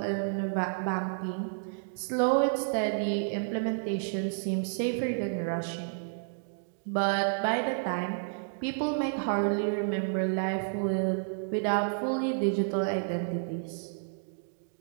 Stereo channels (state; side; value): silent; left; digital silence